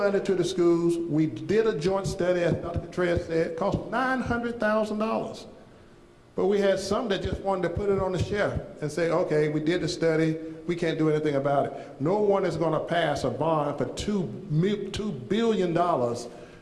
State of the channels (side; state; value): both; identical; correlation 1.00